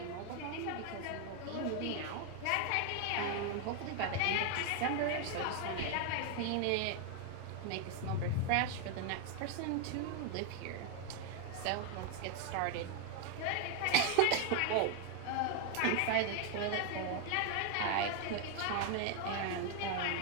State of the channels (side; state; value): both; different; correlation 0.01